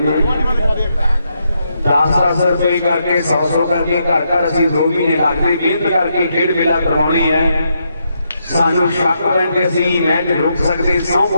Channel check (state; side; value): inverted; both; correlation -0.80